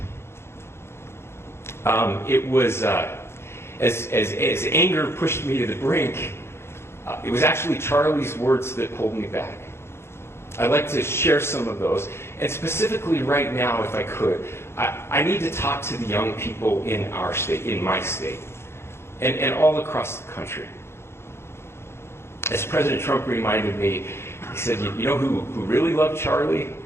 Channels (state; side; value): late; right; 0.12 ms